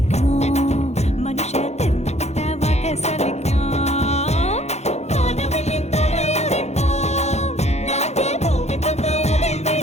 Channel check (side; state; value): right; late; 0.32 ms